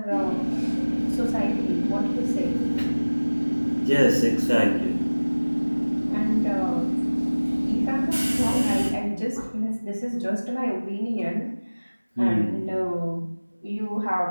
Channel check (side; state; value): both; inverted; correlation -1.00